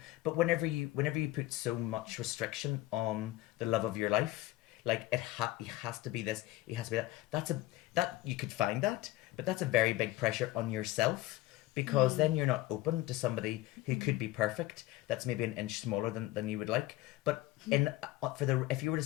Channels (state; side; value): quieter; right; 16.9 dB